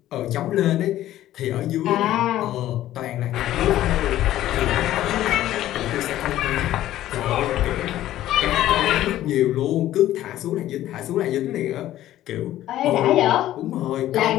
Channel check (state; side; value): quieter; right; 13.6 dB